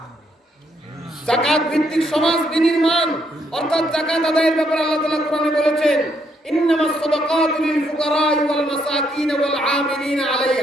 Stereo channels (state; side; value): normal; both; correlation 0.74